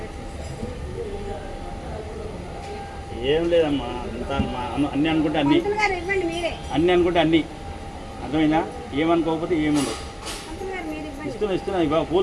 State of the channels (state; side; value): identical; both; correlation 1.00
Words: ఏం లేదమ్మా, అంతా అన్నీ అనుకుంటే అన్నీ, పంతులు గారు ఇవ్వండి మీరే. అన్నీ అనుకుంటే అన్నీ. అర్థమైందా? ఏమనుకోకపోతే ఏముండదు. పంతులు గారు మీరు ఇవ్వండి. ఇస్తున్నా ఇవ్వ,